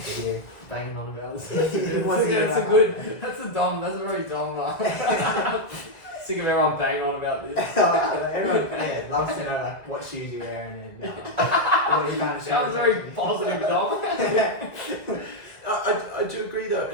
to hear. Banging on about this. Once again, That's a good. That's a very dumb. Sick of everyone banging on about this. Everyone loves to know like what shoes you're wearing and what you kind of Sounds very positive, Dom. I do agree though,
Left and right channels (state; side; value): late; right; 1.8 ms